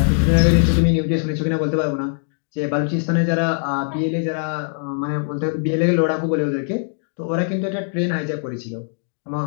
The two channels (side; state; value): right; silent; digital silence